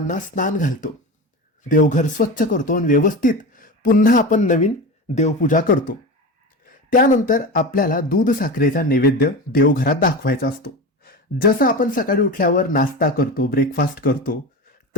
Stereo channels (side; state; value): both; normal; correlation 0.26